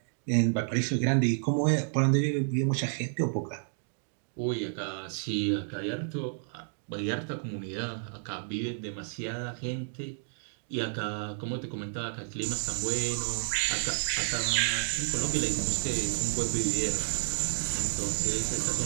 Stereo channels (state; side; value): silent; left; digital silence